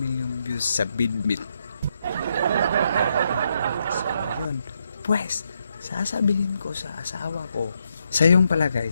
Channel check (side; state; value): both; inverted; correlation -0.79